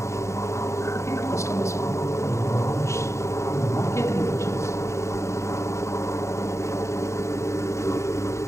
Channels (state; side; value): late; right; 0.14 ms